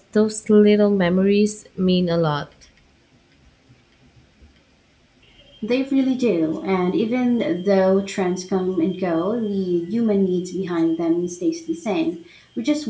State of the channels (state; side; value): identical; both; correlation 1.00